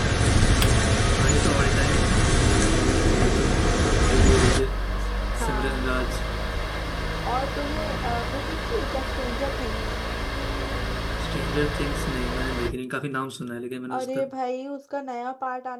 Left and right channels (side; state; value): both; identical; correlation 1.00